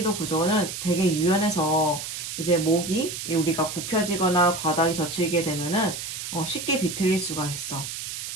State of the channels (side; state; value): right; noise; hiss, 7 dB below the sound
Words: 구조는 되게 유연해서 이제 목이 우리가 굽혀지거나 과다하게 젖히게 되면은 쉽게 비틀릴 수가 있어.